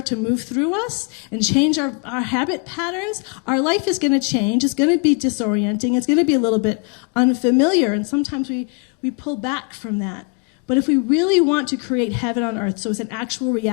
to move through us and change our habit patterns, our life is going to change. It's going to be disorienting. It's going to be a little bit unfamiliar, and sometimes we pull back from that. But if we really want to create heaven on earth, so it's an actual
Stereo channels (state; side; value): quieter; right; 32.6 dB